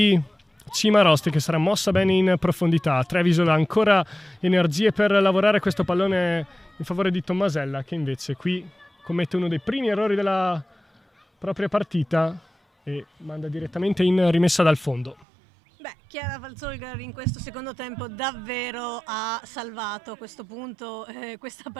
Cimarosti che sarà mossa bene in profondità. Trevisol ha ancora energie per lavorare questo pallone in favore di Tommasella che invece qui commette uno dei primi errori della propria partita e manda direttamente in rimessa dal fondo. Beh, Chiara Valzolger in questo secondo tempo davvero ha salvato a questo punto questa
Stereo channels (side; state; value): left; drops out; at 15.2 s